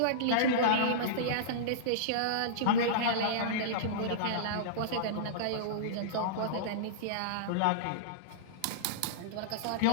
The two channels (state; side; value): different; both; correlation -0.03